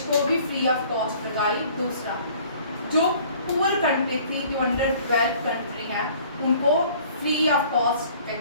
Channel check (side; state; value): both; inverted; correlation -0.53